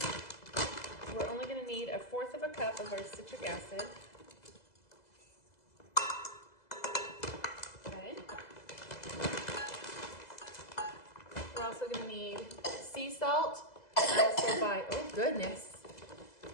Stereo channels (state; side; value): late; right; 2.0 ms